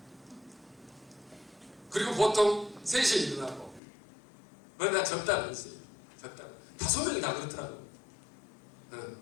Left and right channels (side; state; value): right; drops out; at 3.8 s